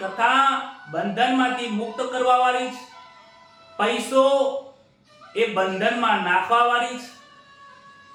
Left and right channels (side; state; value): both; identical; correlation 1.00